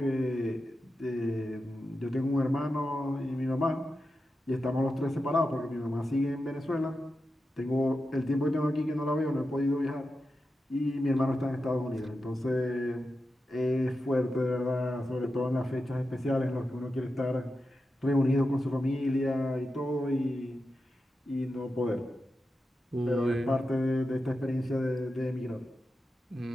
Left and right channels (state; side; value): normal; both; correlation 0.90